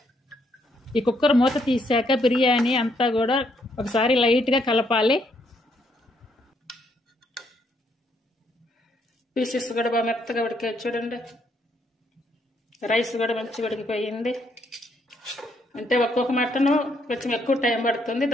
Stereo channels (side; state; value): both; normal; correlation 0.72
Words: ఈ కుక్కర్ మూత తీసాక బిర్యానీ అంతా కూడా ఒకసారి లైట్ గా కలపాలి. పీసెస్ కూడా బాగా మెత్తగా ఉడికాయి. చూడండి, రైస్ కూడా మంచిగా ఉడికిపోయింది. అంటే ఒక్కొక్క మటన్ కొంచెం ఎక్కువ టైం పడుతుంది,